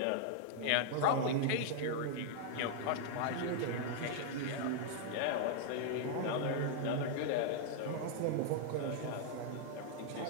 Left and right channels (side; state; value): both; different; correlation 0.00